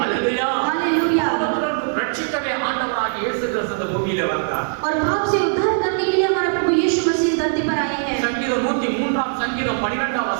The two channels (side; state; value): left; silent; 57 dB below the other